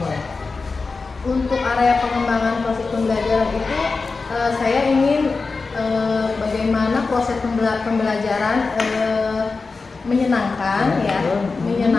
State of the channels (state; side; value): quieter; right; 4.2 dB